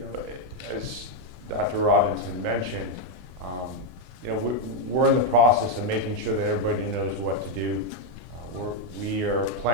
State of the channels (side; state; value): left; late; 20 ms